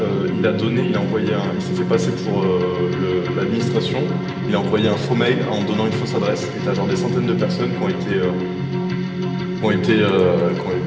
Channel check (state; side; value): identical; both; correlation 1.00